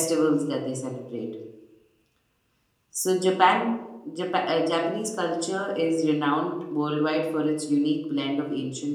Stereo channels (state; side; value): identical; both; correlation 1.00